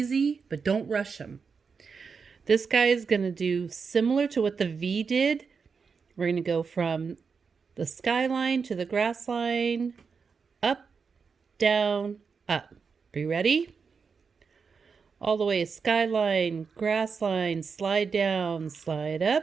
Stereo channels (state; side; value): quieter; left; 5.5 dB